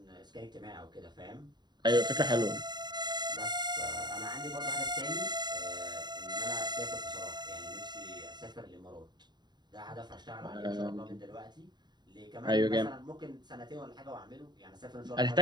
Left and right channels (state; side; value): late; left; 0.21 ms